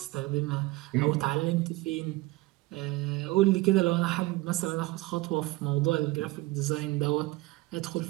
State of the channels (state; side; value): quieter; left; 20.4 dB